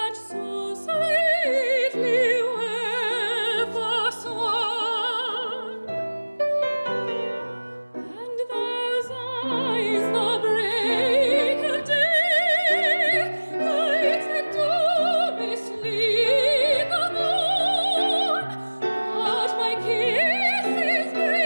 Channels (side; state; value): both; inverted; correlation -1.00